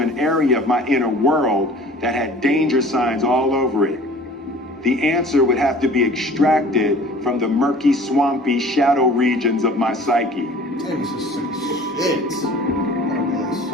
area of my inner world that had danger signs all over it. The answer would have to be extracted from the murky, swampy shadow regions of my psyche. Damn, this is sick as shit.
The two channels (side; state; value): both; normal; correlation 0.47